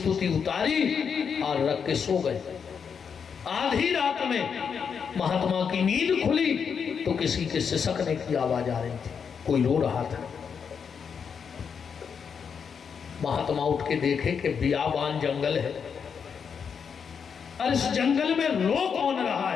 उतारी और रख के सो गए। आधी रात में महात्मा की नींद खुली तो किसी के सिसकने की आवाज आ रही थी, कोई रो रहा था। महात्मा उठ के देखे कि बियाबान जंगल है, और इस जंगल में रो कौन रहा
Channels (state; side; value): quieter; right; 6.6 dB